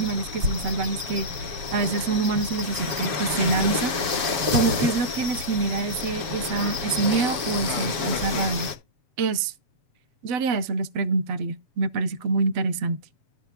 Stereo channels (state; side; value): late; left; 7.3 ms